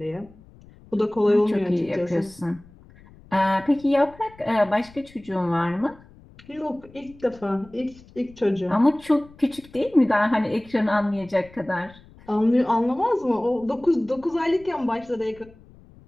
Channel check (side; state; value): left; noise; rumble, 24 dB below the sound